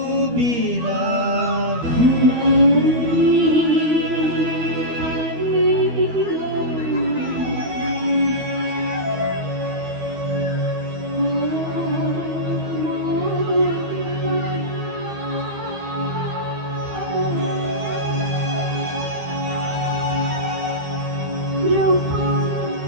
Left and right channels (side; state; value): left; late; 13 ms